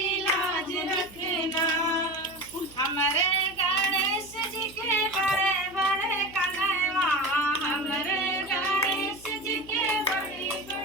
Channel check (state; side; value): noise; right; hum, 22 dB below the sound